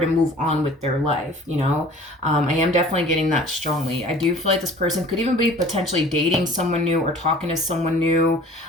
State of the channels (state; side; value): normal; both; correlation 0.48